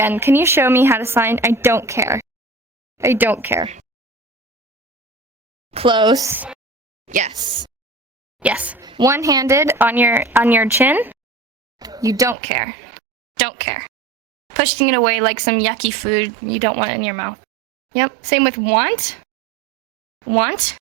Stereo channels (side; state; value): left; drops out; at 12.4 s